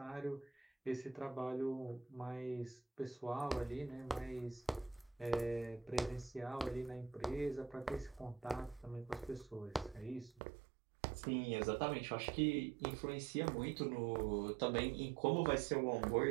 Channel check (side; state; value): left; drops out; at 10.4 s